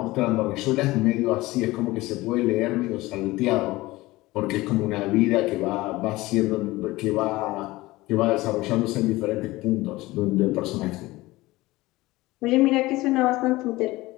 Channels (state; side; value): quieter; right; 19.5 dB